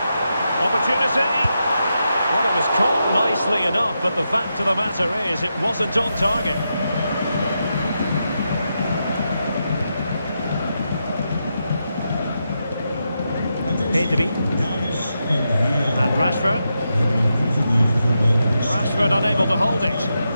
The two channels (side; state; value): both; inverted; correlation -0.86